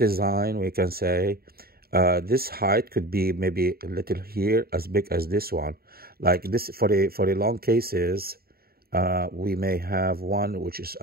we can say this height could be maybe a little here, as big as this one. Like this, for the long cases, we may have one which is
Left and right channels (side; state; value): left; late; 0.44 ms